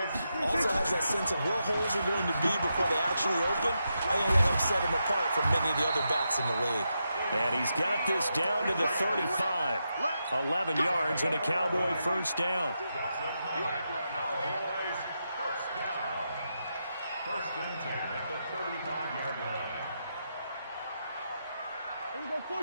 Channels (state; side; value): inverted; both; correlation -0.85